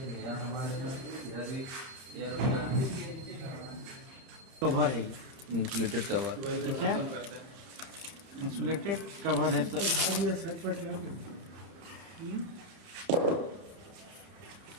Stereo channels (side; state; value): left; late; 30 ms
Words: यार हमारे इधर भी यार अपना कवर है ये, इंसुलेटेड कवर। ठीक है, इंसुलेटेड कवर है।